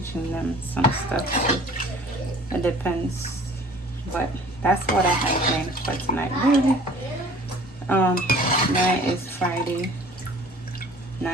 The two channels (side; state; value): both; normal; correlation 0.50